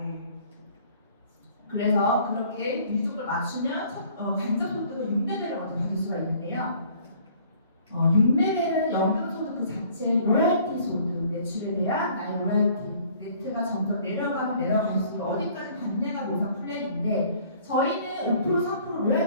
그래서 그렇게 유지조건을 맞추면 간접 소득은 6레벨을 먼저 받을 수가 있는데요. 6레벨은 연금 소득 그 자체 로열티 소득, 매출에 대한 나의 로열티, 네트가 점점 내려갈수록 어디까지 받냐가 보상 플랜인데 저희는 5%, 3%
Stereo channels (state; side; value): inverted; both; correlation -0.56